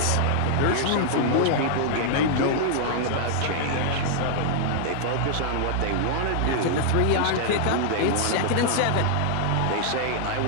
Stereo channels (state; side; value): different; both; correlation -0.01